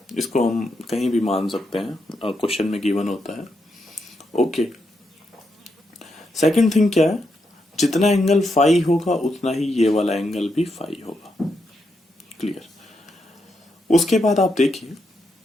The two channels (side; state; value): both; normal; correlation 0.82